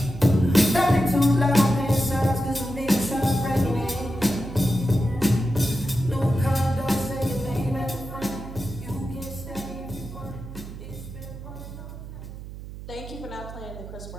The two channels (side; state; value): right; noise; hum, 12 dB below the sound